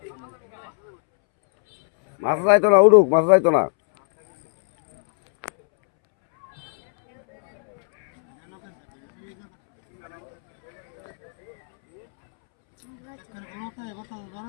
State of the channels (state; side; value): silent; right; 65 dB below the other